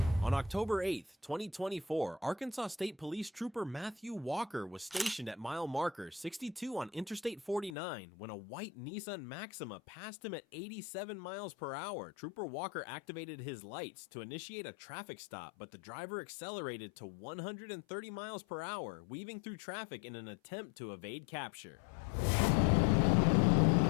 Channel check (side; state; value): right; drops out; at 7.8 s